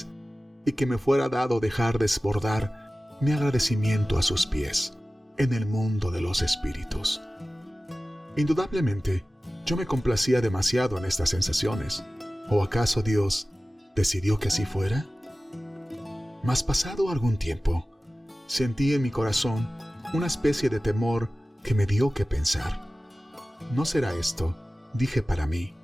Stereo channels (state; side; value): normal; both; correlation 0.96